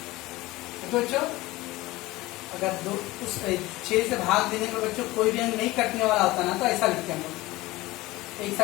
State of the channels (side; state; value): right; quieter; 19.4 dB